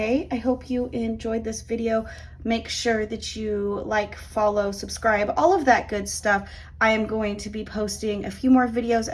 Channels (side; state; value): both; identical; correlation 1.00